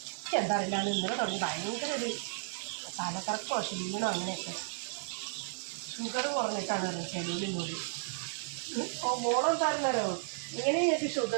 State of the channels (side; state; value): left; silent; digital silence